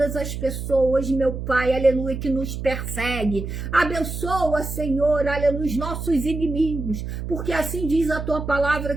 as pessoas, meu Pai, aleluia, que nos persegue, abençoa, Senhor, aleluia, os nossos inimigos, porque assim diz a tua palavra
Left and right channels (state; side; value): noise; right; hum, 6 dB below the sound